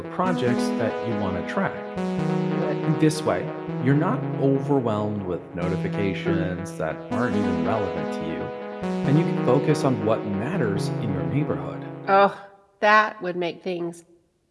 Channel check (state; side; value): identical; both; correlation 1.00